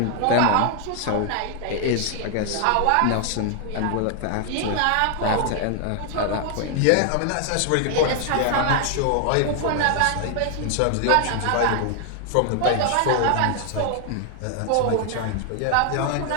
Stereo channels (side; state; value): both; different; correlation 0.00